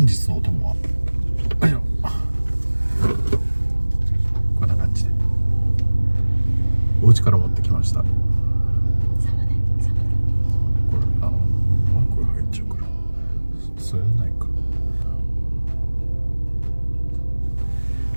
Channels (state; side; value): inverted; both; correlation -1.00